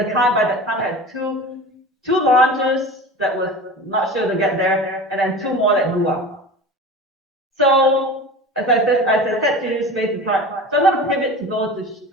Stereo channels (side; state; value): both; normal; correlation 0.33